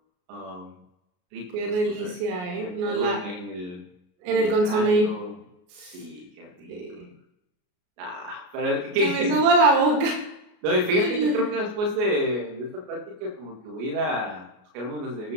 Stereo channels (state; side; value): late; left; 33 ms